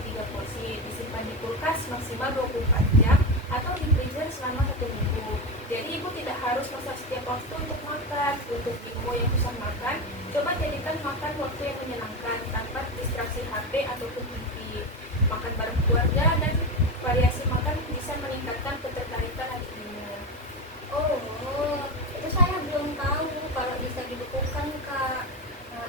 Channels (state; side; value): normal; both; correlation 0.18